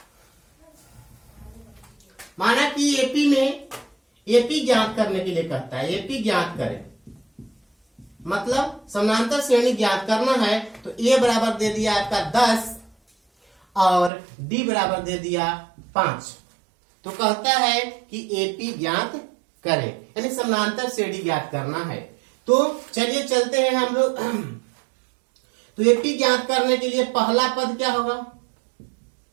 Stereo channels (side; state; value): left; drops out; at 14.1 s